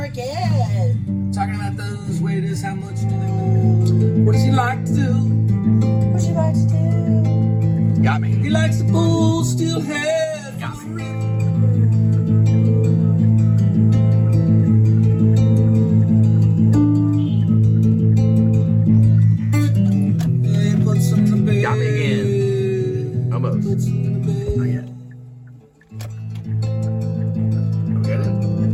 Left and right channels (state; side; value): identical; both; correlation 1.00